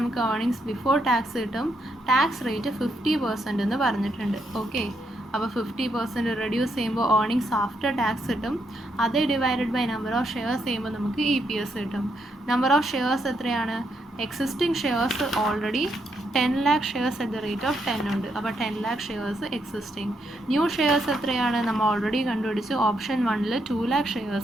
ഏർണിങ്സ് ബിഫോർ ടാക്സ് കിട്ടും. ടാക്സ് റേറ്റ് 50% എന്ന് പറഞ്ഞിട്ടുണ്ട്. ഓക്കെ, അപ്പോൾ 50% റെഡ്യൂസ് ചെയ്യുമ്പോൾ ഏർണിങ്സ് ആഫ്റ്റർ ടാക്സ് കിട്ടും. അത് divided by number of shares ചെയ്യുമ്പോൾ നമുക്ക് EPS കിട്ടും. നമ്പർ ഓഫ് ഷെയർസ് എത്രയാണ്? Existing shares already 10 lakh shares at the rate of 10 ഉണ്ട്. അപ്പോൾ 10 lakh shares existing. New shares എത്രയാണ്? നമ്മൾ ഓൾറെഡി കണ്ടുപിടിച്ചു. ഓപ്ഷൻ 1ൽ 2 lakh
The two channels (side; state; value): both; normal; correlation 0.78